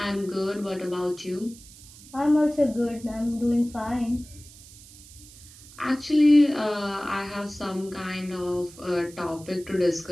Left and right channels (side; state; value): right; noise; hiss, 20 dB below the sound